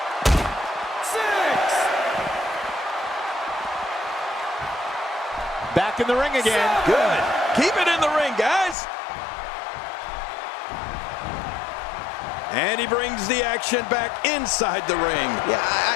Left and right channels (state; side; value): drops out; right; at 8.8 s